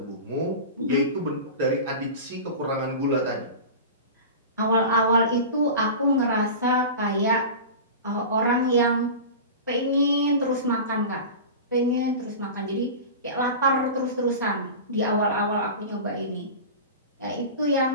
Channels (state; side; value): inverted; both; correlation -0.31